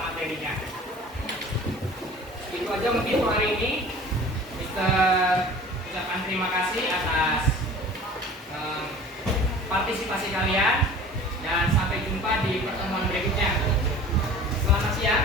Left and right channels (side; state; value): both; normal; correlation 0.44